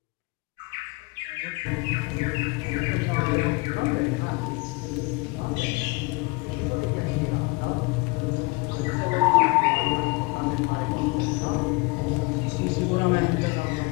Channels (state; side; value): quieter; right; 26.8 dB